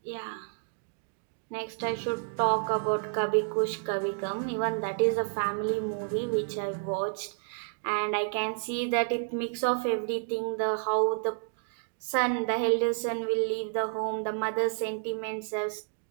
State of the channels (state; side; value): silent; left; digital silence